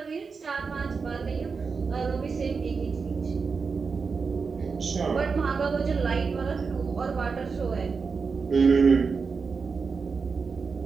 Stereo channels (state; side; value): quieter; left; 5.1 dB